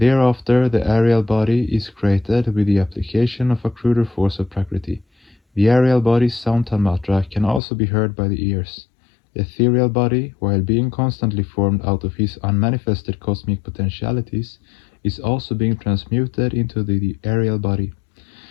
the aerial body is created with the application of a cruder force of Prakriti. The aerial body's sound tanmatra can also be heard by the ears. The ethereal body, while being constantly formed out of his unmanifested cosmic potentialities, is also being transmuted into the aerial body,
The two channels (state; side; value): drops out; right; at 7.6 s